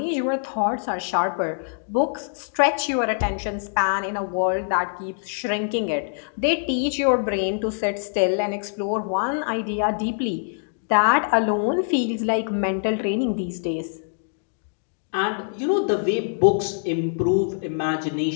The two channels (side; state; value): right; silent; digital silence